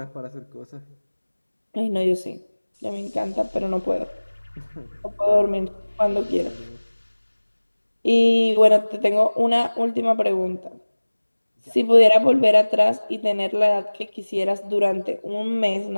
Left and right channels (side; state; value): both; inverted; correlation -1.00